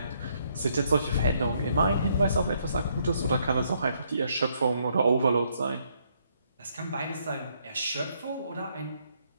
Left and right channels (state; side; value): inverted; both; correlation -0.72